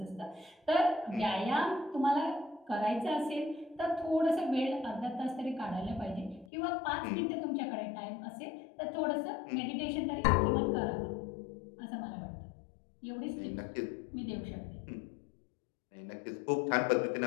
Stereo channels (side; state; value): right; drops out; at 6.5 s